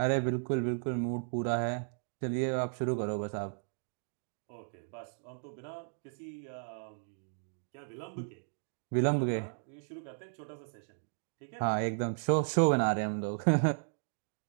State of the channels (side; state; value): left; silent; digital silence